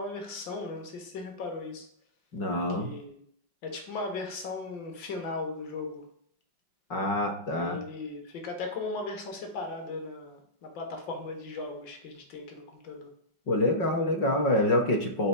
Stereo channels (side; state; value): right; late; 5.8 ms